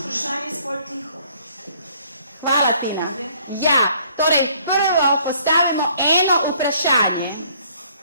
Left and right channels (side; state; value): both; inverted; correlation -0.62